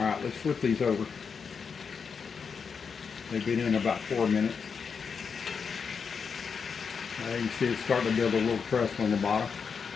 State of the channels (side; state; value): right; quieter; 6.0 dB